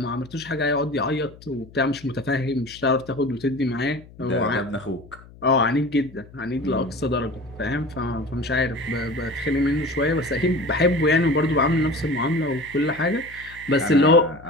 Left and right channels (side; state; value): left; noise; hum, 21 dB below the sound